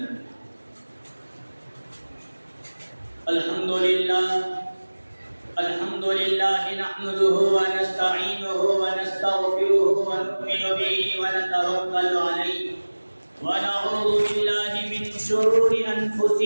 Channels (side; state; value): both; inverted; correlation -1.00